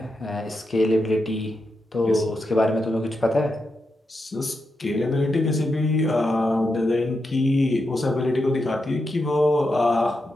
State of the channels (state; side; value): normal; both; correlation 0.86